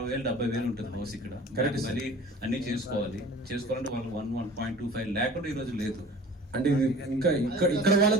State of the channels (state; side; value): normal; both; correlation 0.43